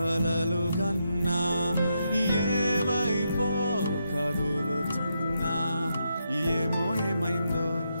కన్నా ఏవైపో కదులుతున్నా ఏమో ఏమైందో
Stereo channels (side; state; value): both; inverted; correlation -0.82